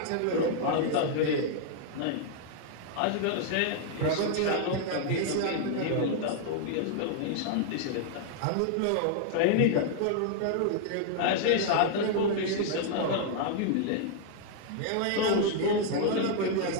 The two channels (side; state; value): both; different; correlation -0.01